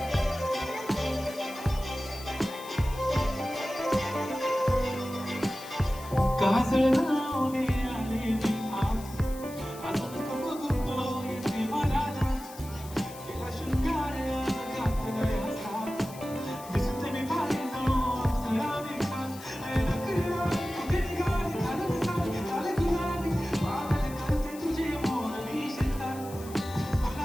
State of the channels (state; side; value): noise; left; hiss, 17 dB below the sound